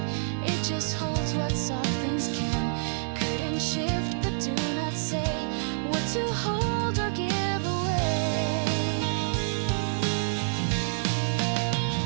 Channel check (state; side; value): silent; left; digital silence